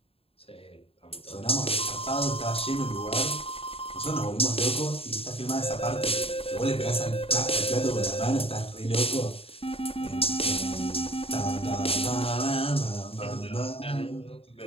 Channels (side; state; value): right; late; 0.28 ms